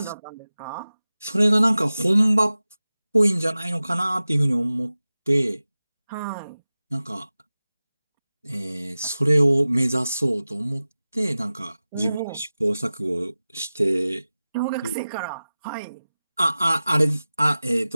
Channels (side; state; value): both; inverted; correlation -0.96